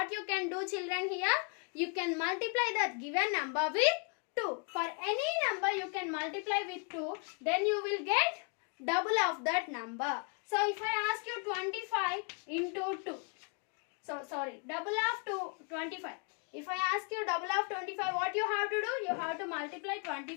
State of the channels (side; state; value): right; quieter; 36.6 dB